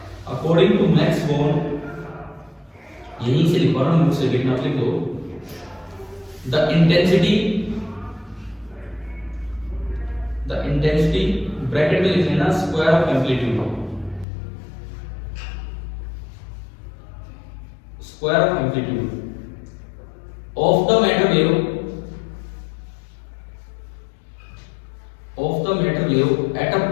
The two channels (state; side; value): drops out; right; at 14.2 s